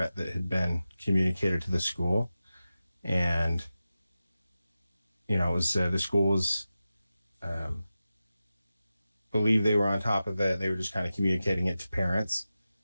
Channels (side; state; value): both; inverted; correlation -0.93